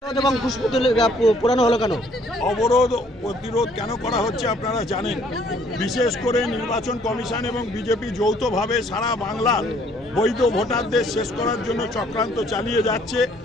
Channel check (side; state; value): both; normal; correlation 0.62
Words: অবরোধ প্রতিরোধ কেন করা হচ্ছে আপনারা জানেন। বিশেষ করে নির্বাচন কমিশন এবং বিজেপি যৌথভাবে সারা বাংলার বৈধ ভোটারদের শেষ করার জন্য চক্রান্ত চালিয়ে যাচ্ছে।